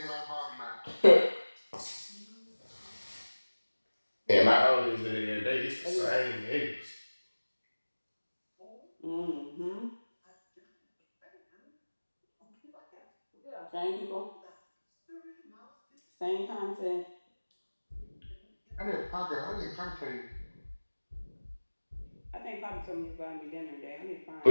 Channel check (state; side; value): inverted; both; correlation -1.00